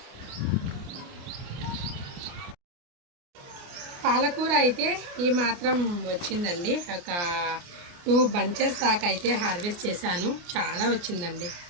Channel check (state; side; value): late; left; 29 ms